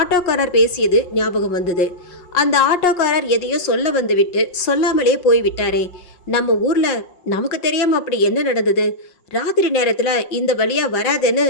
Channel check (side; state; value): right; late; 5.6 ms